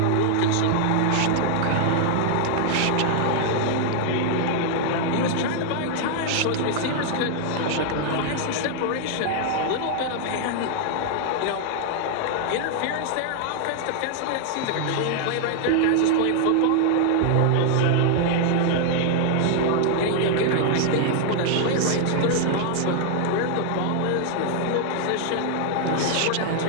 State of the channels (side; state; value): both; different; correlation 0.00